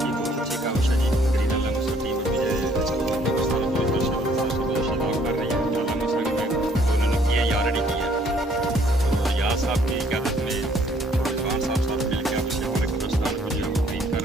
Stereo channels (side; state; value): both; normal; correlation 0.63